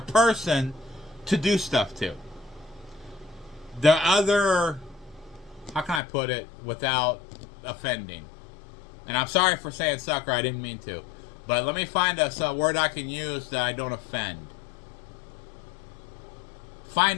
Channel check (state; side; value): drops out; right; at 6.0 s